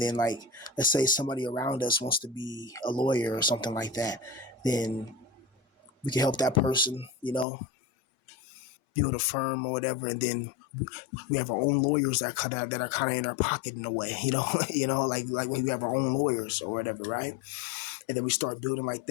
then, like, let's say somebody around us wants to be a lawyer or something like that, then we can help that person, build a firm or whatever. And then we have our own lawyers that are kind of in our pocket in a way, like we have our own lawyers or whatever, right? And then we start building like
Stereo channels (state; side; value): drops out; right; at 7.5 s